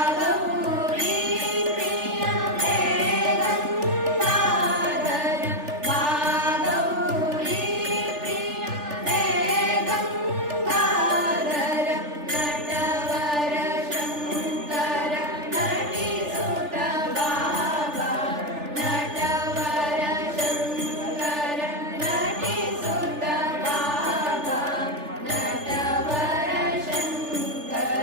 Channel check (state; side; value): late; left; 3.4 ms